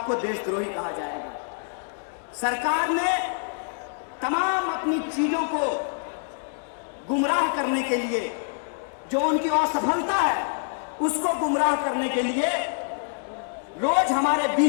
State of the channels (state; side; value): silent; right; digital silence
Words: देशद्रोही कहा जाएगा। सरकार ने तमाम अपनी चीजों को गुमराह करने के लिए, जो उनकी असफलता है उसको गुमराह करने के लिए रोज हमारे